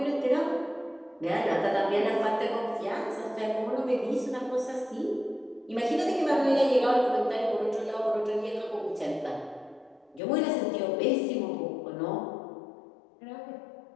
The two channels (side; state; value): right; drops out; at 10.2 s